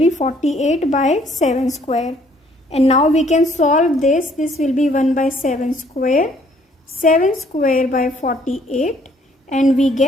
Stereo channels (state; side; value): normal; both; correlation 0.63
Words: 48 by 7 square. And now we can solve this. This will be 1 by 7 square. 7 square by 48. And we